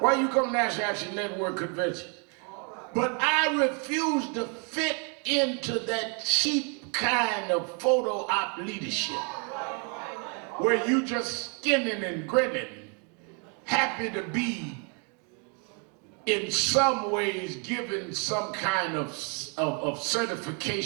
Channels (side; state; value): left; quieter; 37.5 dB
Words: you come to National Action Network convention? But I refuse to fit into that cheap kind of photo op leadership where you just skinning and grinning, happy to be in some ways given some kind of